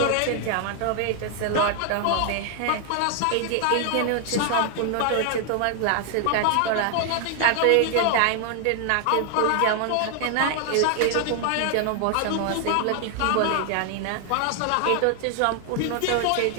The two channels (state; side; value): different; both; correlation 0.00